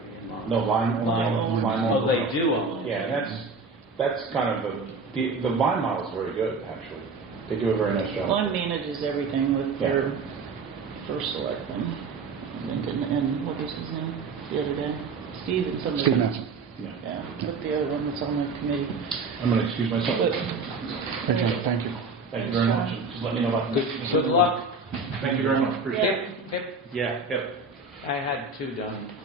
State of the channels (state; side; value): quieter; left; 3.9 dB